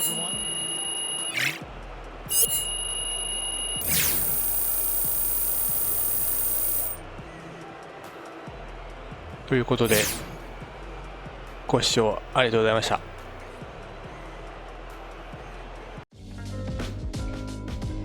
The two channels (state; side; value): identical; both; correlation 1.00